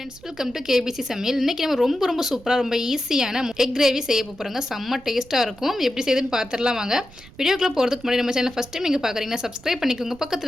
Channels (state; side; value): noise; right; rumble, 21 dB below the sound